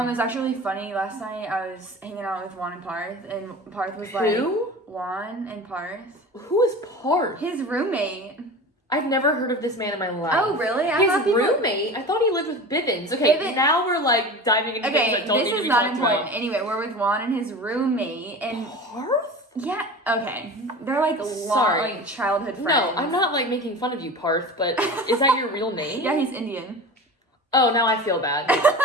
It was actually really funny. Last night I was hanging out with Juan and Parth, and Parth was like, Who? Juan and Parth, Who is Parth? his roommate. I've never heard of this man in my life. Oh, really? I His thought people- roommate? I thought he lived with Bivens. Okay, Bivens- now we're like diving into things Okay, that don't need this to is be not talked important. about. Anyway, we're with Juan and his roommate, and Parth? yeah, okay, they're like long, Sorry. like childhood friends. No, I'm not like making fun of you, Parth, but is that your real name? Yeah, he's Indian. Oh, now I feel bad.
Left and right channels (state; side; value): normal; both; correlation 0.34